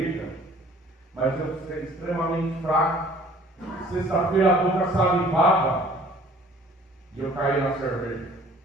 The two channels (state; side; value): normal; both; correlation 0.53